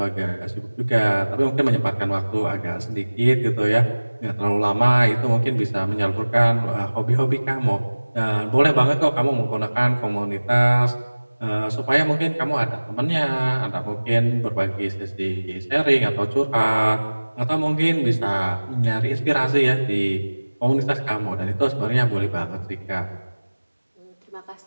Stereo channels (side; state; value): both; inverted; correlation -1.00